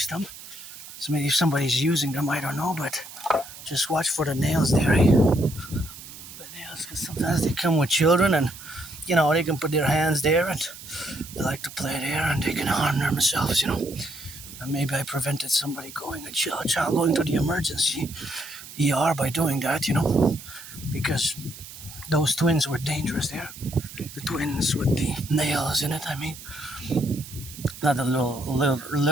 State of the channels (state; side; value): noise; right; hiss, 15 dB below the sound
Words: them, if somebody's using them, I don't know, but just watch for the nails there, eh? The nails, because sometimes they come with children and. They can put their hands there and they like to play there and they can harm themselves, And maybe I prevented a child going to the emergency ER by doing that, because those twins were dangerous there. The twins with the nails in it, Not the